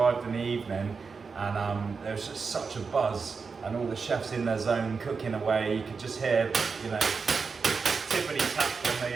in the evening, and there was just such a buzz, and all the chefs in their zone cooking away. You could just hear, you know, tippity tap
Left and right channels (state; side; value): quieter; left; 5.0 dB